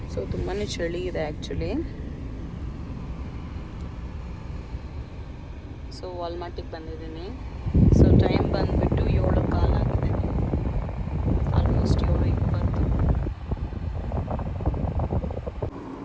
ಸೊ ತುಂಬಾ ಚಳಿ ಇದೆ ಆ್ಯಕ್ಚುಲಿ. ಸೊ ವಾಲ್ಮಾರ್ಟಿಗೆ ಬಂದಿದ್ದೀನಿ. ಸೊ ಟೈಮ್ ಬಂದುಬಿಟ್ಟು 7:15 ಆಗಿದೆ, ಆಲ್ಮೋಸ್ಟ್ 7:20.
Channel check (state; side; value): identical; both; correlation 1.00